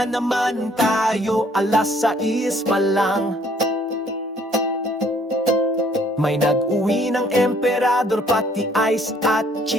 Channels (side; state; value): both; normal; correlation 0.62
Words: naman tayo, 6:00 pa lang. May nag-uwi ng emperador, pati ice at